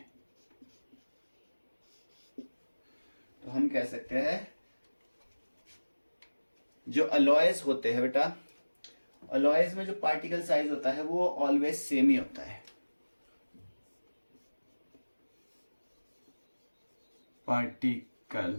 तो हम कह सकते हैं जो अलॉयस होते हैं बेटा, अलॉयस में जो पार्टिकल साइज होता है वो ऑलवेज सेम ही होता है।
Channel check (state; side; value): inverted; both; correlation -1.00